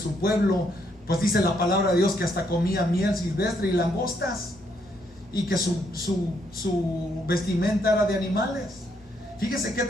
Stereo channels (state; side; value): noise; left; hum, 27 dB below the sound